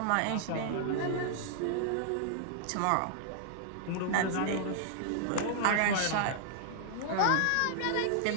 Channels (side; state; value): both; different; correlation -0.01